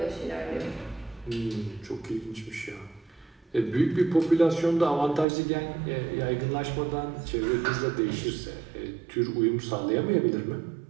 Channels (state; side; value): drops out; left; at 5.2 s